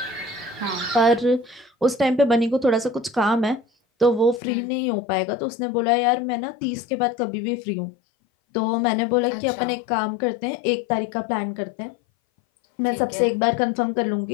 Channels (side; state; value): right; drops out; at 4.4 s